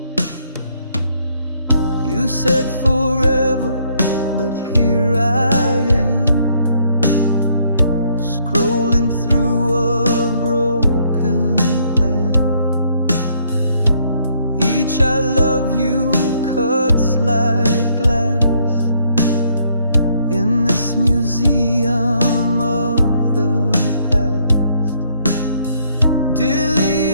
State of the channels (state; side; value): inverted; both; correlation -0.68